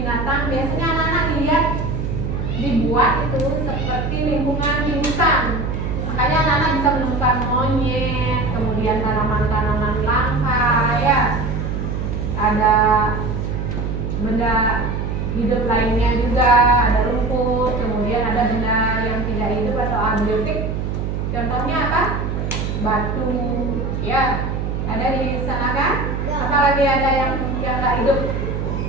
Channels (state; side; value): noise; right; hum, 2 dB below the sound